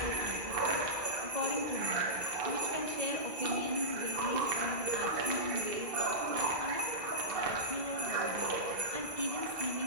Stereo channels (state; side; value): late; left; 2.0 ms